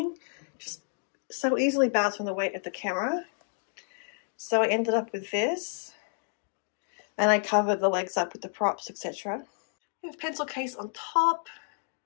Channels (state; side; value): silent; right; 58 dB below the other